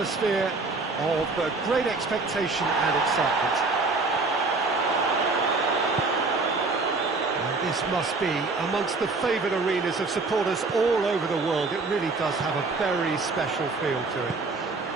of great expectation and excitement. This must be amongst the favoured arenas of supporters all over the world. It really does have a very special feel to it.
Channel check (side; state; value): left; quieter; 3.8 dB